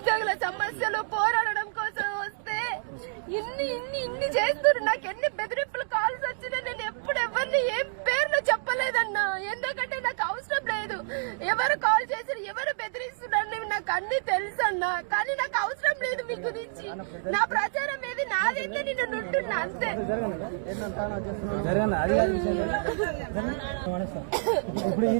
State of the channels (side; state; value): left; silent; digital silence